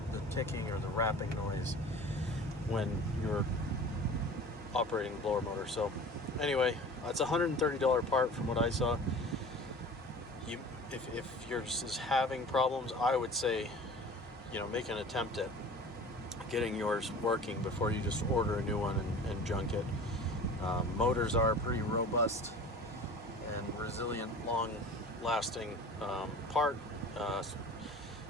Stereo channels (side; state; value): both; normal; correlation 0.40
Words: the ticking or the rapping noise when you're operating the blower motor. So anyway, it's a $130 part from what I saw. If you're just having problems, I would say, make an attempt at getting yours working before you just order a new one and junk it. Motors are a pretty robust and resilient, long-lasting part,